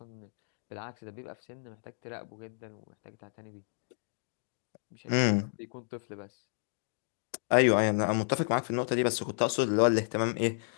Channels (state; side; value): silent; right; digital silence